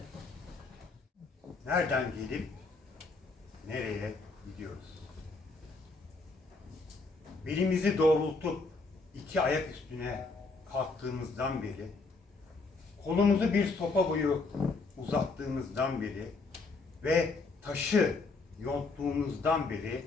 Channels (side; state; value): right; quieter; 3.8 dB